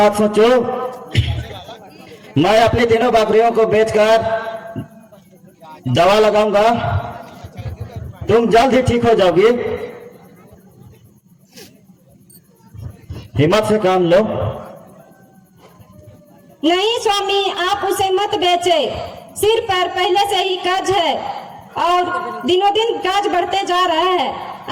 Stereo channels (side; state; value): both; identical; correlation 1.00